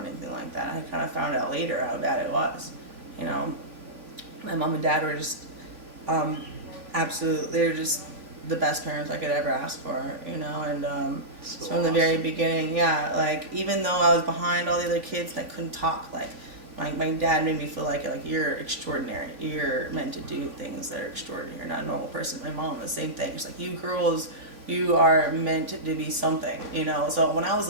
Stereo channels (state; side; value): late; left; 3.4 ms